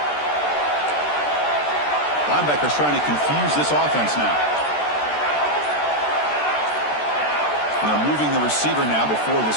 Linebackers trying to confuse this offense now. And they're moving the receiver now before the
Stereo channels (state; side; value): late; right; 13 ms